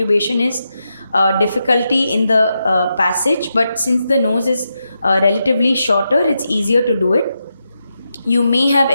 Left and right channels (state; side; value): inverted; both; correlation -0.86